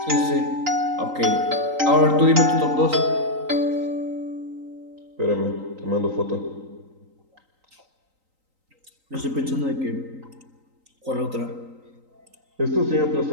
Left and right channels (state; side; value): late; left; 3.9 ms